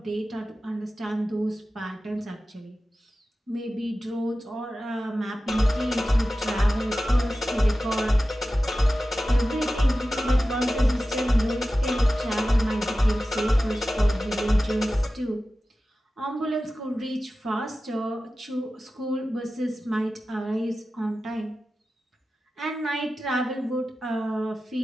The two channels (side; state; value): both; normal; correlation 0.94